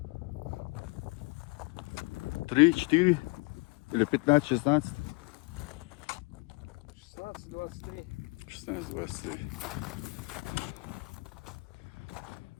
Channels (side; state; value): right; quieter; 27.3 dB